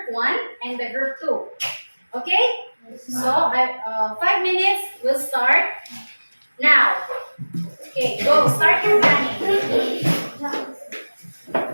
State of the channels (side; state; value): both; inverted; correlation -1.00